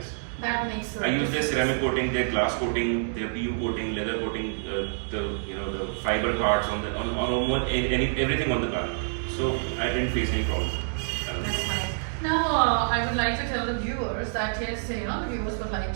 That makes I use their ceramic coating, their glass coating, their PU coating, leather coating, the fiber parts on everything on the car. So I didn't face any problem. That's fine. Now, I would like to tell the viewers that yes, the viewers would like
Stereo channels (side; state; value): left; silent; digital silence